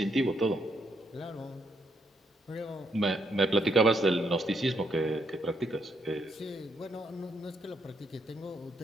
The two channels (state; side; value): normal; both; correlation 0.76